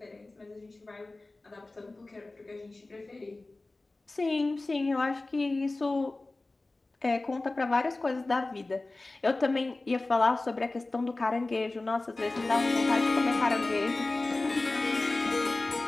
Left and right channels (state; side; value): quieter; right; 3.1 dB